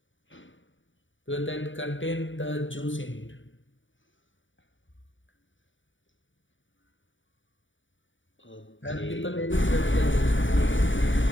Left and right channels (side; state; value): right; late; 0.56 ms